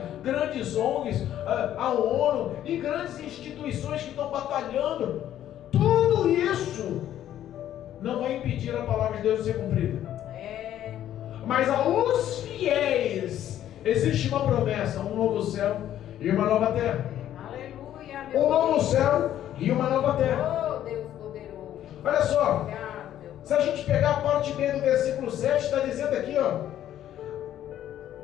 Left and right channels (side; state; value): right; quieter; 11.6 dB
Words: grandes ONGs, a ONU e grandes instituições que estão batalhando, tudo isso não vai impedir a palavra de Deus de ser cumprida. Mas aos fiéis existe uma promessa: um novo céu e uma nova terra. Aleluia, meu Um novo Deus. céu e uma nova terra. Oh, Deus poderoso. Olha só, Obrigado, Deus. se a gente pegar a parte B do versículo 7, está dizendo aqui, ó,